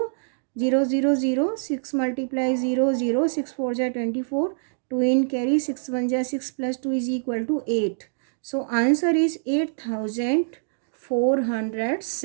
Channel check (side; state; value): left; silent; digital silence